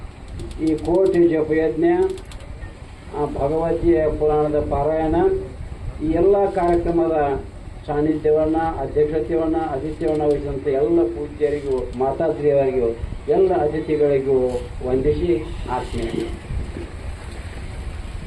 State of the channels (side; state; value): both; identical; correlation 1.00